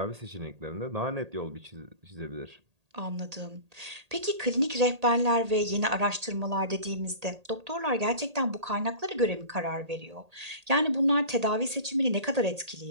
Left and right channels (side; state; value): left; late; 1.8 ms